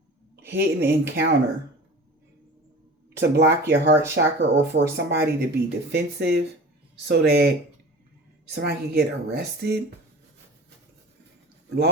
Hidden encounter. To block your heart chakra or for somebody to be defensive so that somebody can get arrested.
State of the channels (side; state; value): both; normal; correlation 0.39